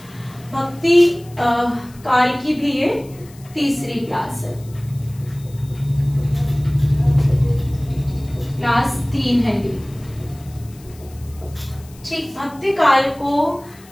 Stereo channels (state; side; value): noise; left; hiss, 24 dB below the sound